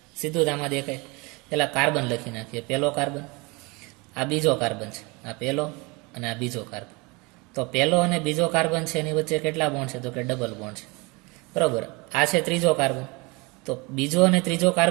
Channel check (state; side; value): quieter; left; 26.8 dB